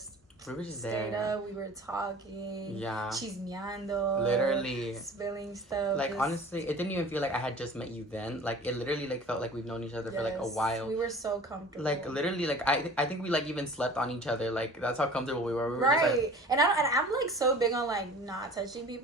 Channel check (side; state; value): both; normal; correlation 0.44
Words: just stayed there. Up, we were talking, yeah, chismeando, literally spilling stuff. Like, honestly, it didn't even feel like I had just met you then. Like, it literally, like, felt like we've known each other for, like, a while. We were so comfortable. Like, literally, like, I think we, like, even slept on each other. Like, that's how comfortable we were. We were right. Just, like... And I'm, like, so big on, like, not touching